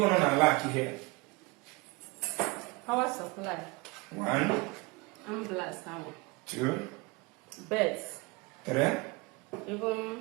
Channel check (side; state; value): left; quieter; 25.0 dB